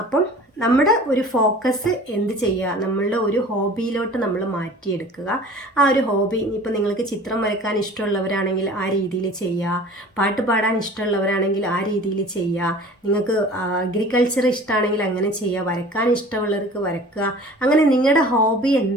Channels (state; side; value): normal; both; correlation 0.44